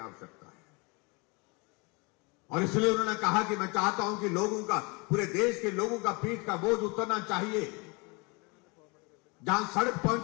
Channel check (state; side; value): quieter; right; 29.0 dB